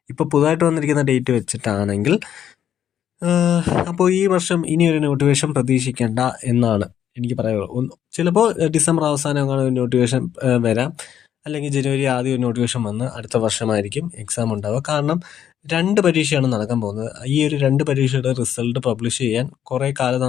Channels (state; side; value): quieter; right; 9.8 dB